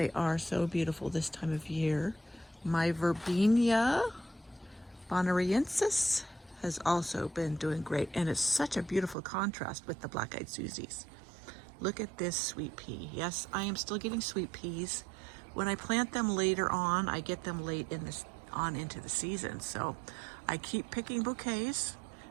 are so beautiful this time of year. My Verbena bonariensis has also been doing great, and it's such a beautiful contrast with the black-eyed Susies. Look at this sweet pea. Yes, I am still getting sweet peas. When I plant them later on, I get them late into the season, so I keep picking bouquets.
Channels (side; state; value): left; drops out; at 9.2 s